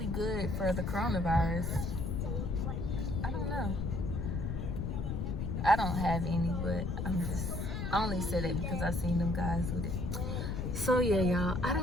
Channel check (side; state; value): left; noise; rumble, 2 dB below the sound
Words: good for the coronavirus. I don't know. I don't have any, but I only said it because I seen them guys with it. So yeah, y'all, I